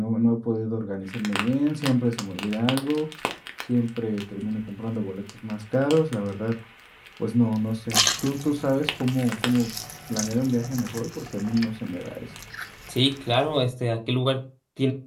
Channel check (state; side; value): identical; both; correlation 1.00